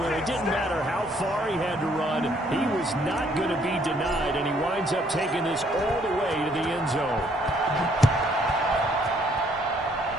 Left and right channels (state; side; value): normal; both; correlation 0.66